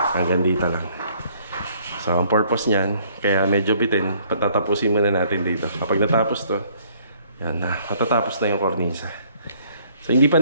dito lang. So ang purpose niyan, kaya medyo bitin, patatapusin muna natin dito. Kapag natapos to, yan na, matatapos na yung kornisa. So hindi pa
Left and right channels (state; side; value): inverted; both; correlation -0.61